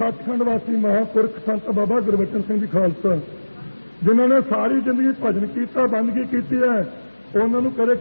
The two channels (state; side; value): inverted; both; correlation -1.00